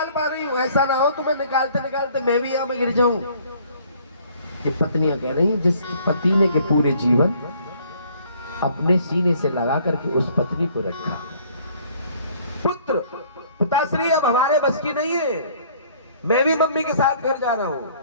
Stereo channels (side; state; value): both; inverted; correlation -0.58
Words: पा रही हूँ। ऐसा ना हो तुम्हें निकालते निकालते मैं भी यहाँ में गिर जाऊं। ये पत्नियां कह रही हैं, जिस पति ने के पूरे जीवन अपने सीने से लगा करके उस पत्नी को रखा। पुत्र, पिताश्री अब हमारे बस की नहीं है, मैं भी मम्मी के साथ घर जा रहा हूं।